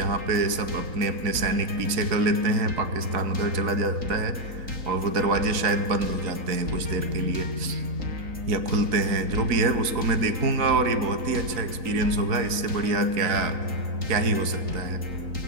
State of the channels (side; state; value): left; late; 4.0 ms